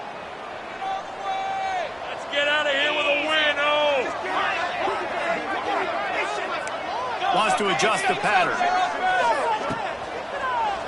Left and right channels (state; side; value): identical; both; correlation 1.00